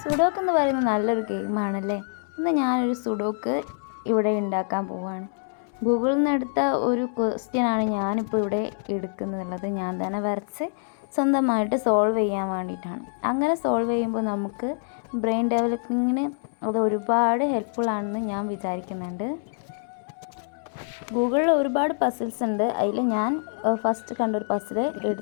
Sudoku എന്ന് പറയുന്നത് നല്ലൊരു ഗെയിമാണല്ലേ. ഇന്ന് ഞാനൊരു സുഡോക്ക് ഇവിടെ ഉണ്ടാക്കാൻ പോവുകയാണ്. ഗൂഗിളിൽ നിന്ന് എടുത്ത ഒരു ക്വസ്റ്റ്യനാണ് ഞാനിപ്പോൾ ഇവിടെ എടുക്കുന്നുള്ളത്. ഞാൻ തന്നെ വരച്ച് സ്വന്തമായിട്ട് സോൾവ് ചെയ്യാൻ വേണ്ടിയിട്ടാണ്. അങ്ങനെ സോൾവ് ചെയ്യുമ്പോൾ നമുക്ക് ബ്രെയിൻ ഡെവലപ്പിങ്ങിന് അത് ഒരുപാട് ഹെൽപ്ഫുൾ ആണെന്ന് ഞാൻ വിചാരിക്കുന്നുണ്ട്. ഗൂഗിളിൽ ഒരുപാട് പസിൽസ് ഉണ്ട്. അതിൽ ഞാൻ ഫസ്റ്റ് കണ്ടൊരു പസിൽ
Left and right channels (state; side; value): silent; right; 61 dB below the other